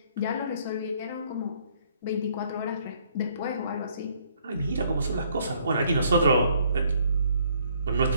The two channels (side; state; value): both; inverted; correlation -0.65